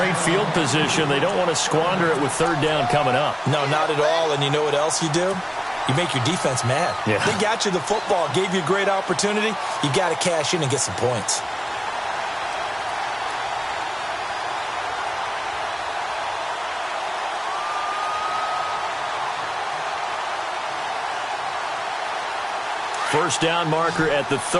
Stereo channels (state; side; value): identical; both; correlation 1.00